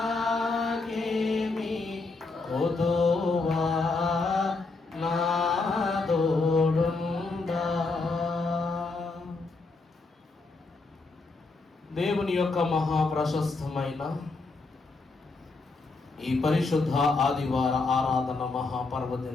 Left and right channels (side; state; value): right; quieter; 3.7 dB